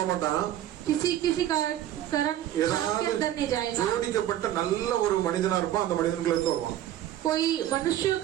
மாட்டான், किसी कारण सांप के ஏதாவது अंदर नहीं जाएगा। ஜோடிக்கப்பட்ட நல்ல ஒரு மனிதனா இருப்பான், அந்த மனிதனுக்குள்ள இருந்து வருவான். कोई मनुष्य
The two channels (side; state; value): left; quieter; 12.4 dB